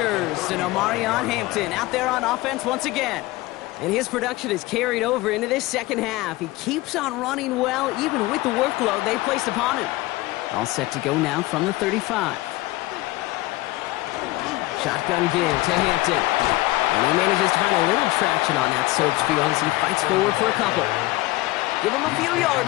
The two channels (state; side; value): quieter; right; 19.3 dB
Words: and Omarion Hampton out there on offense once again. And his production is carried over into this second half. He keeps on running well, even with the workload they placed upon him. All set to go now from the 35. Shotgun give to Hampton. And he manages to find a little traction on that search field as he fights forward for a couple. Give him a few